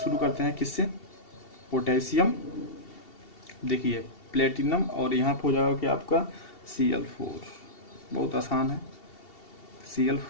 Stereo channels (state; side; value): late; right; 2.7 ms